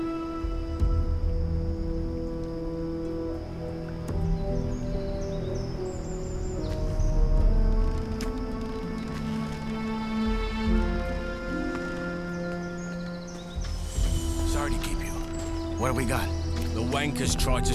What have we got? The wankers tried to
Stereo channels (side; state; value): both; identical; correlation 1.00